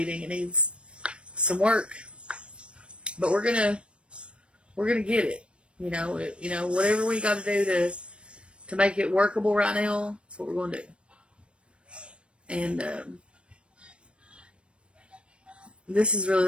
It needs some work. But we're gonna get it. Whatever we got to do to make it workable right now, that's what we're going to do. And this is really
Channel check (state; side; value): late; left; 0.058 ms